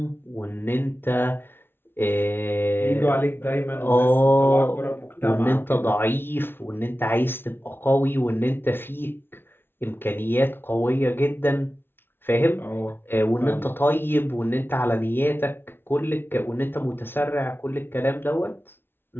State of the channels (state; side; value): late; right; 0.11 ms